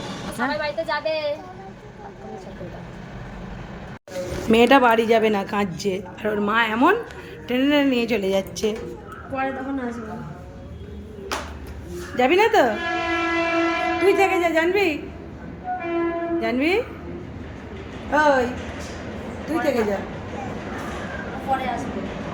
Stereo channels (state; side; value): identical; both; correlation 1.00